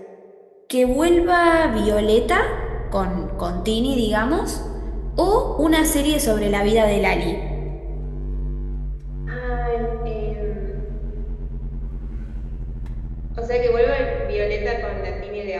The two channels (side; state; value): both; identical; correlation 1.00